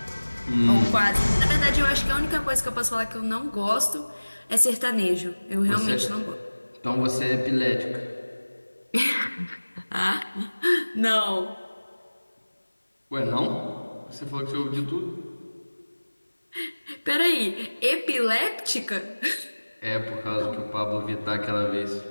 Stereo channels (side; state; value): both; inverted; correlation -1.00